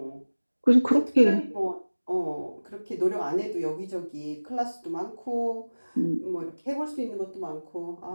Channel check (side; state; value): both; inverted; correlation -1.00